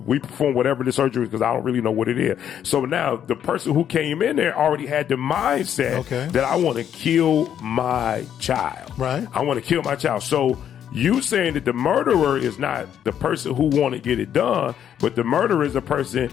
we perform whatever the surgery is because I don't really know what it is. So now the person who came in there already had the mindset that I want to kill my child. Right. I want to kill my child. So you saying that the murderer is not the person who want to get it done, but the murderer is a person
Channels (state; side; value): quieter; right; 9.5 dB